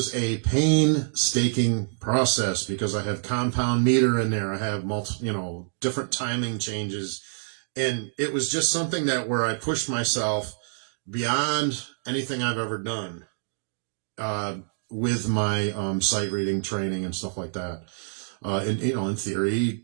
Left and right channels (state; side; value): silent; left; digital silence